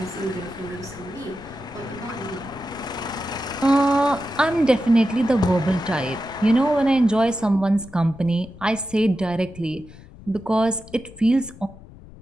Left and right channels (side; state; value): left; noise; rumble, 19 dB below the sound